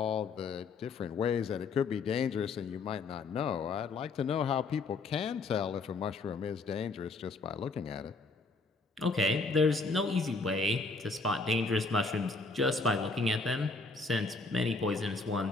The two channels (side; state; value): right; quieter; 3.8 dB